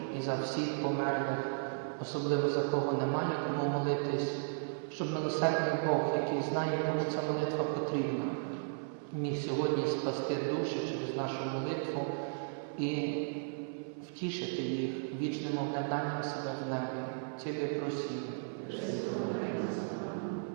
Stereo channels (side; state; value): left; silent; 54 dB below the other